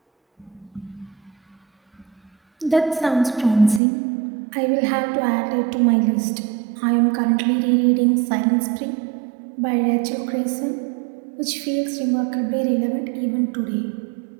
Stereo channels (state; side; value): drops out; left; at 3.8 s